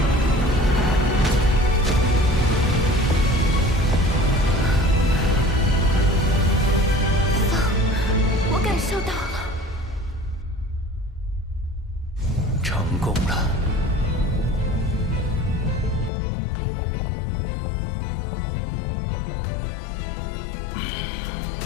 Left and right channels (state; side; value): drops out; right; at 16.1 s